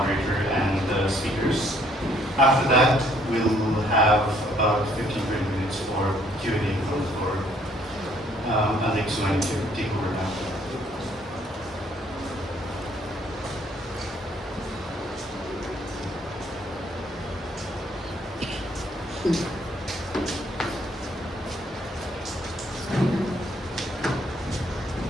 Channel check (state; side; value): normal; both; correlation 0.65